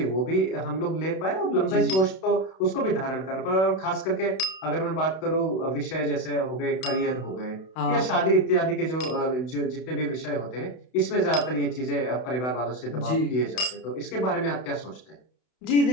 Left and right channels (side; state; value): right; late; 32 ms